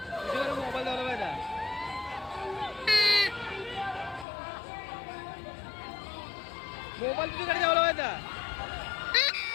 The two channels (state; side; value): drops out; right; at 4.2 s